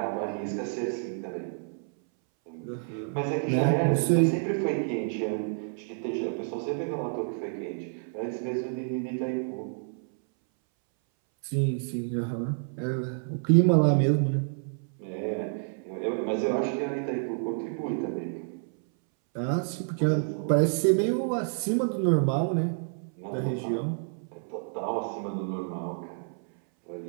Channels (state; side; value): silent; left; 59 dB below the other